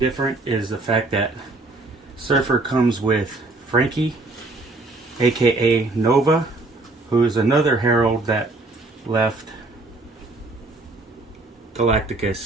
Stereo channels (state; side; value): quieter; left; 3.2 dB